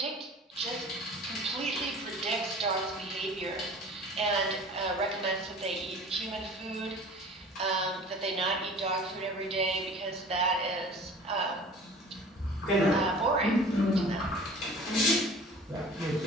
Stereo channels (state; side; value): normal; both; correlation 0.44